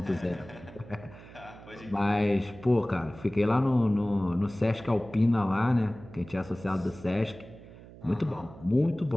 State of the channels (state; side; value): noise; right; hum, 18 dB below the sound